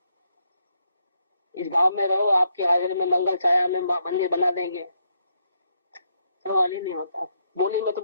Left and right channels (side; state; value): both; inverted; correlation -0.77